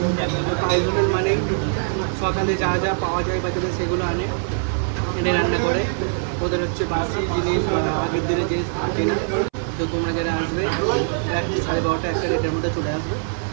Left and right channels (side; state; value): left; silent; 64 dB below the other